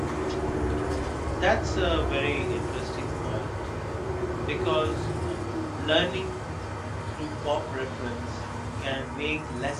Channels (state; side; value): identical; both; correlation 1.00